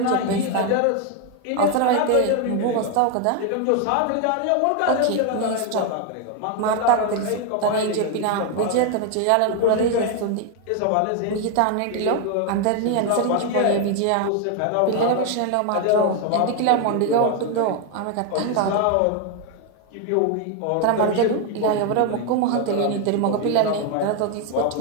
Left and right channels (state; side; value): different; both; correlation 0.01